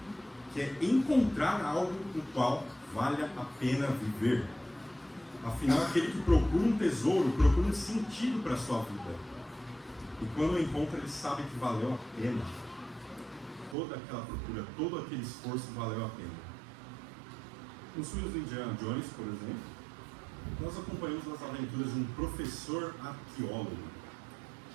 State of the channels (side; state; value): left; drops out; at 13.8 s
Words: que é encontrar algo no qual vale a pena viver. Afinal, aquele que procura um tesouro, procura um sentido para a sua vida. E quando o encontra, ele sabe que valeu a pena. Toda aquela procura, todo aquele esforço valeu a pena. Nos filmes do Indiana Jones, por exemplo, nós acompanhamos as aventuras de um professor arqueólogo